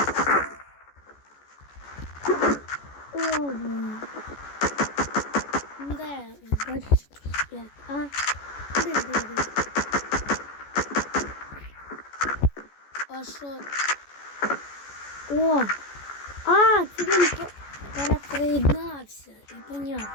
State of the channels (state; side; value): late; right; 14 ms